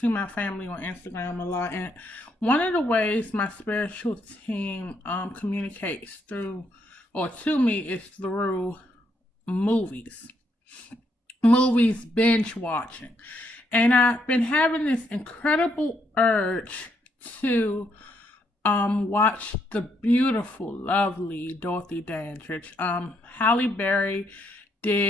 my family on Instagram a lot, and one of the ways my spiritual team communicates through or to me is through movies. Movies binge watching. And I've been having this incredible urge to watch the beautiful, lovely Dorothy Dandridge. Halle Berry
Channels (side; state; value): both; normal; correlation 0.75